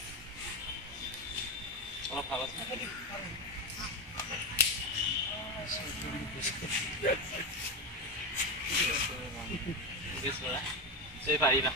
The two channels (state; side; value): normal; both; correlation 0.14